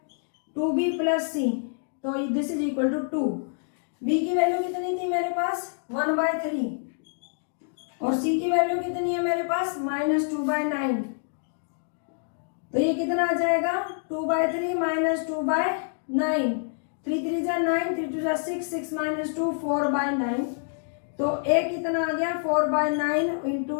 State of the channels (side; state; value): right; silent; digital silence